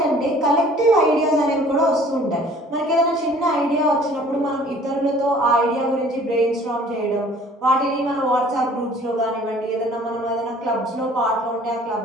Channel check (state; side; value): normal; both; correlation 0.52